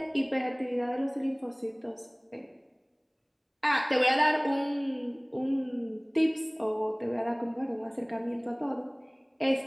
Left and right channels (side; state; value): both; identical; correlation 1.00